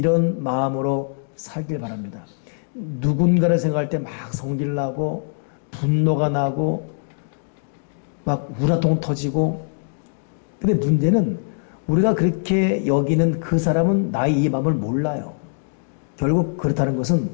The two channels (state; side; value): silent; right; digital silence